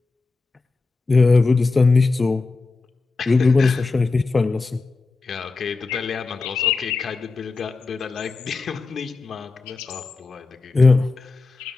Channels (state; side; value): quieter; right; 3.9 dB